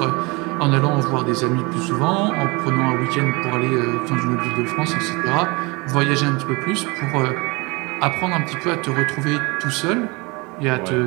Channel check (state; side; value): quieter; left; 26.4 dB